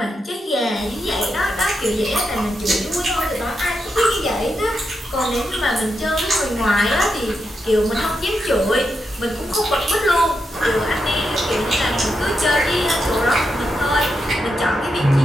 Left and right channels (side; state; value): both; normal; correlation 0.85